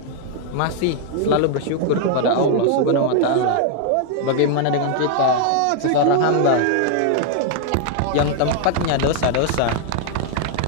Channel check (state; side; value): different; both; correlation 0.00